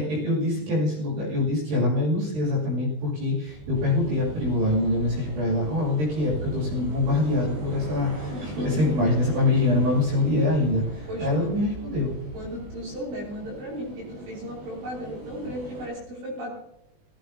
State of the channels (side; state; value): left; late; 20 ms